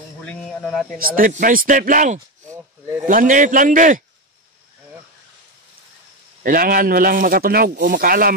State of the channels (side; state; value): both; normal; correlation 0.13